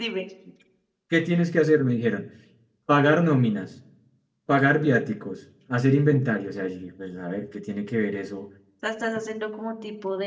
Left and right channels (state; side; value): identical; both; correlation 1.00